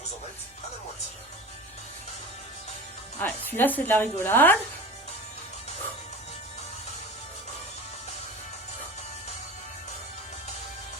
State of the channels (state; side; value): normal; both; correlation 0.32